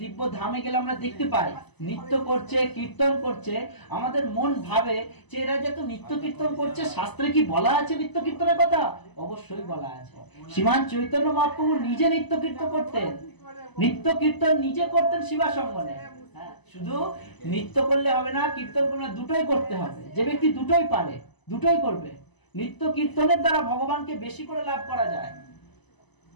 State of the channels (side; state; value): right; late; 1.0 ms